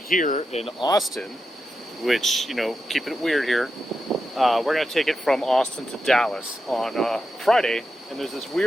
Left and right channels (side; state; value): both; normal; correlation 0.88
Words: in Austin, which, keeping it weird here. We're going to take it from Austin to Dallas on Friday, and there's this